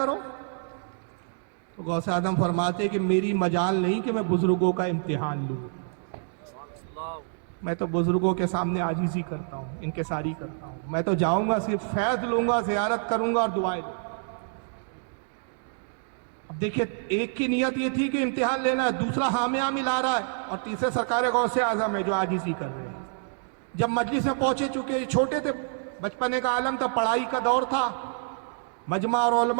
تو غوث اعظم فرماتے کہ میری مجال نہیں کہ میں بزرگوں کا امتحان لوں, میں تو بزرگوں کے سامنے عاجزی کرتا ہوں, انکساری کرتا ہوں. میں تو جاؤں گا صرف فیض لوں گا, زیارت کروں گا اور دعائیں دوں گا. اب دیکھیے ایک کی نیت یہ تھی کہ امتحان لینا ہے, دوسرا حامیہ ملا رہا ہے, اور تیسرے سرکار غوث اعظم ہے جو عاجزی کر رہے ہیں. جب مجلس میں پہنچے, چکے چھوٹے تھے, بچپنے کا عالم تھا, پڑھائی کا دور تھا, مجمع اور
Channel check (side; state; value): left; silent; 60 dB below the other